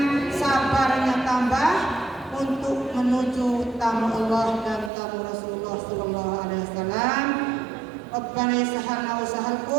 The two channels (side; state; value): left; drops out; at 4.9 s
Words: sabarnya tambah untuk menuju tamu Allah dan tamu Rasulullah sallallahu alaihi wasallam. Rabbana yassahhalna wa